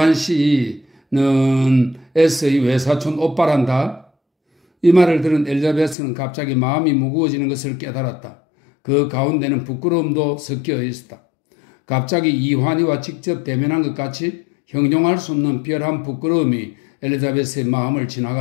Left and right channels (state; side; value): drops out; right; at 6.0 s